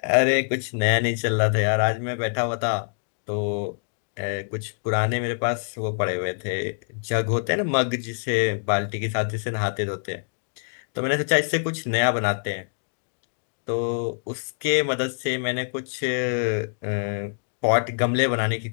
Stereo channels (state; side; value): silent; right; digital silence